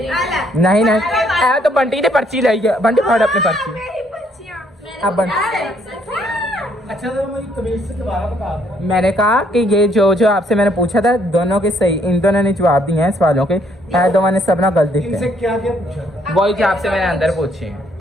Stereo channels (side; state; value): both; normal; correlation 0.68